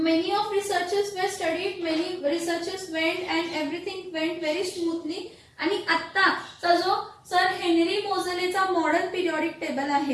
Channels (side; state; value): both; identical; correlation 1.00